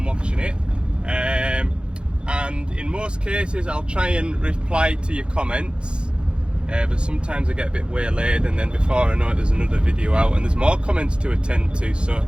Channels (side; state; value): left; late; 0.055 ms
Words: watching it. And in most cases I'll try and reply to your comments, but sometimes I get a bit waylaid and then before I know it there's another video out and there's more comments to attend to. So